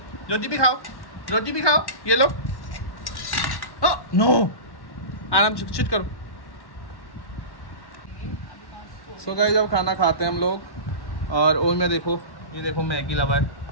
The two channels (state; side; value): late; right; 1.1 ms